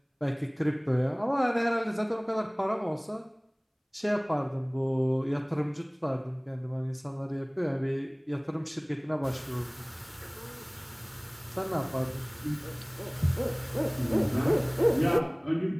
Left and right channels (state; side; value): identical; both; correlation 1.00